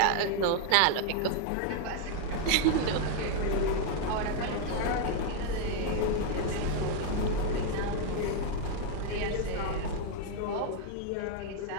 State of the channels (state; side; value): different; both; correlation 0.00